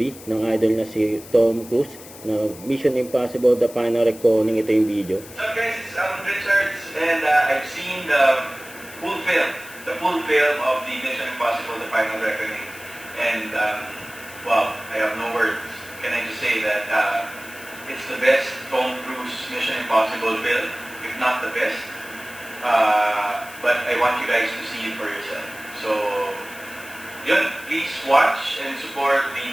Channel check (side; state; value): left; noise; hiss, 17 dB below the sound